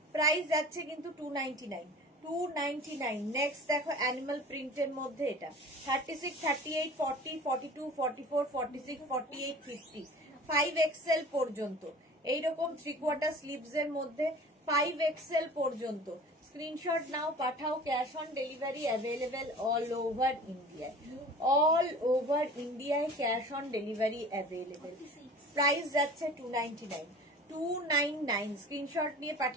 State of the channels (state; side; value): normal; both; correlation 0.42